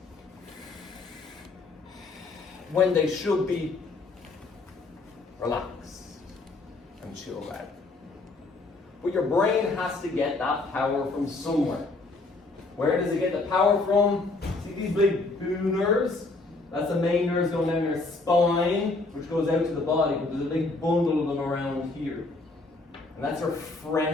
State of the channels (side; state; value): right; quieter; 3.4 dB